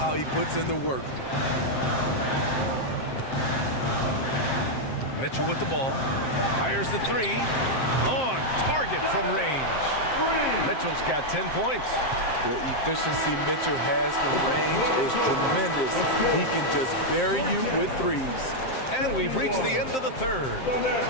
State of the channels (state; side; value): late; right; 7.6 ms